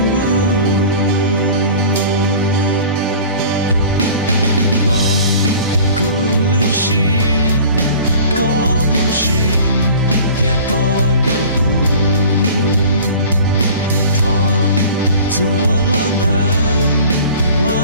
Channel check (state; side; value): inverted; both; correlation -0.43